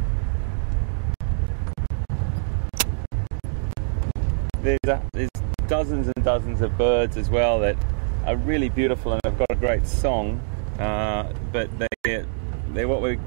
There's dozens and dozens of birds as well that are really beautiful and have got a great song, but they're what we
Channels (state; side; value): silent; left; digital silence